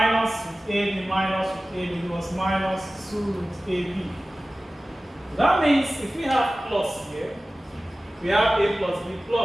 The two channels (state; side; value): normal; both; correlation 0.96